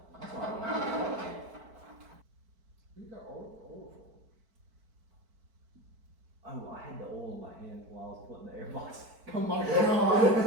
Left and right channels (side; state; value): left; late; 4.5 ms